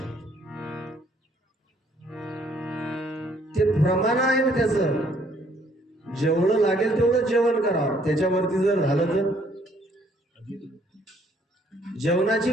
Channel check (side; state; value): both; normal; correlation 0.64